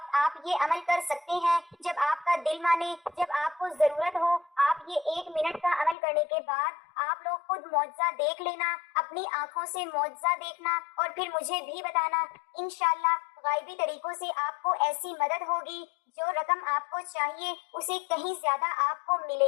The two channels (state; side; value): drops out; right; at 6.0 s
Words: آپ یہ عمل کر سکتے ہیں، جب آپ کا دل مانے، جب آپ کو ضرورت ہو۔ آپ یہ 1 منٹ کا عمل کرنے کے بعد آپ لوگ خود معجزہ دیکھ لینا، اپنی آنکھوں سے معجزہ دیکھنا اور پھر مجھے بھی بتانا۔ انشاءاللہ غائبی طریقوں سے آپ کو ایسی مدد ہوگی، جو رقم آپ کو چاہیے اسے کہیں زیادہ آپ کو